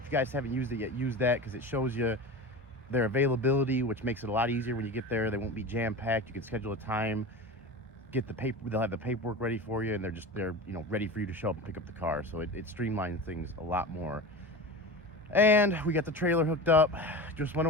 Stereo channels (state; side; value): normal; both; correlation 0.29